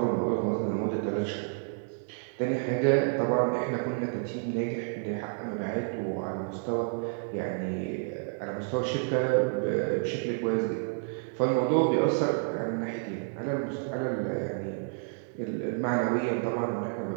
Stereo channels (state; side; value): silent; left; 58 dB below the other